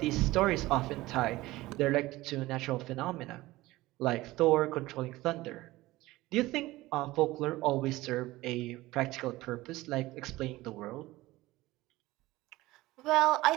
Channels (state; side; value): quieter; left; 18.5 dB